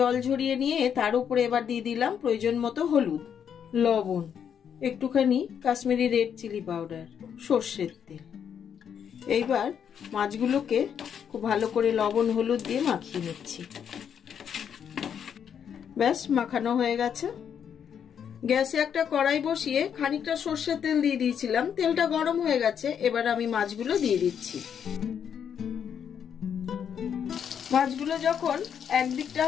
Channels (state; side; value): quieter; right; 8.1 dB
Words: ঝরিয়ে নিয়ে তার উপরে এবার দিয়ে দিলাম প্রয়োজন মতো হলুদ, লবণ, একটুখানি কাশ্মীরি রেড চিলি পাউডার, সর্ষের তেল। এইবার মাছগুলোকে খুব ভালো করে লবণ হলুদ দিয়ে মাখিয়ে নিচ্ছি। ব্যাস, মাখানো হয়ে গেছে। গ্যাসে একটা কড়াই বসিয়ে খানিকটা সর্ষের তেল দিয়ে দিয়েছিলাম, তেলটা গরম হয়ে গেছে। এবার আমি মাছগুলো দিয়ে দিচ্ছি। মাছগুলো যখন একদিকটা